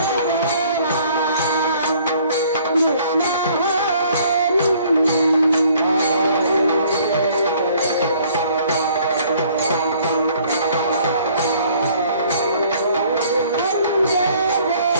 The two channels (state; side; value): inverted; both; correlation -0.58